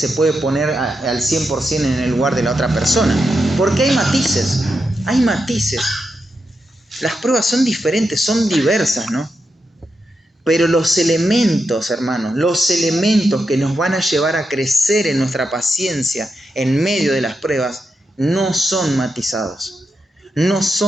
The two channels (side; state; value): both; normal; correlation 0.86